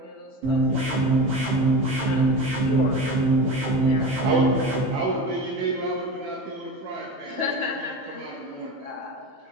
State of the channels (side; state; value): left; late; 15 ms